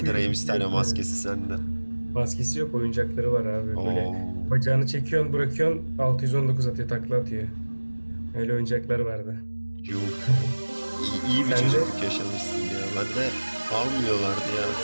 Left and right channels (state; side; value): inverted; both; correlation -1.00